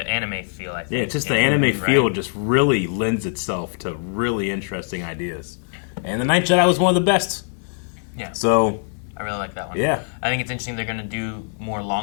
feel. I think. Yeah, it's just the anime feel just really lends itself to really interesting ideas. And the Ninth Jedi was one of the best. Yeah. So I really like that one. Yeah. I think it's interesting they're going to do more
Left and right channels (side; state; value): right; silent; digital silence